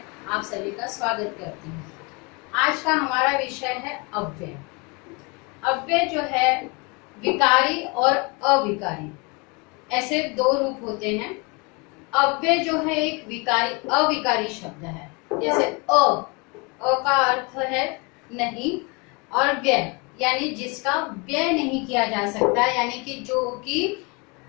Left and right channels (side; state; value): right; quieter; 29.7 dB